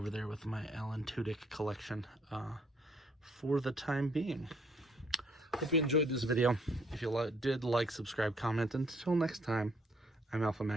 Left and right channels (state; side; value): normal; both; correlation 0.66